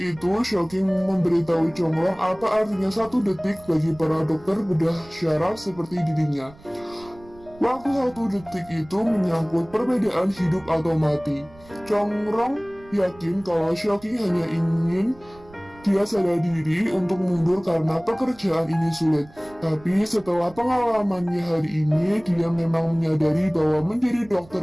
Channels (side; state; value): right; noise; rumble, 24 dB below the sound